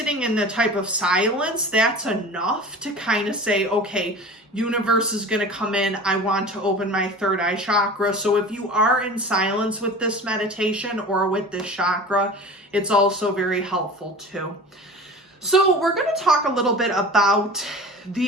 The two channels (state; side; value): normal; both; correlation 0.37